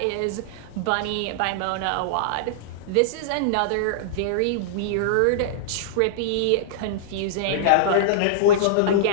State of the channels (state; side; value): different; both; correlation -0.02